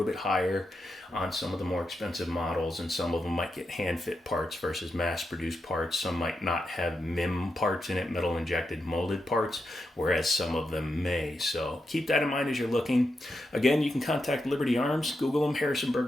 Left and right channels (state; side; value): normal; both; correlation 0.86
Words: bit higher on some of the more expensive models, and some of them might get hand fit parts versus mass produced parts. Some might not have MIM parts in it, metal injected molded parts, whereas some of them may. So keep that in mind as you're looking. Again, you can contact Liberty Arms, Google them, Harrisonburg,